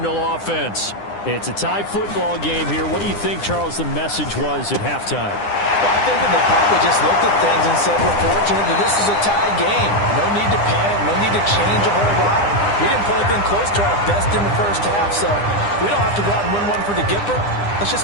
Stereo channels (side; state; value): right; late; 9.9 ms